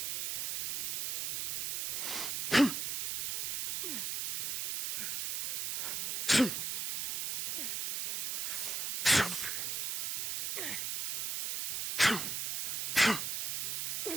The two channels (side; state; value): right; noise; hiss, 2 dB below the sound